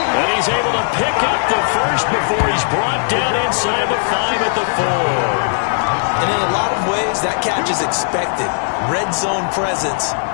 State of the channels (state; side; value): silent; right; 56 dB below the other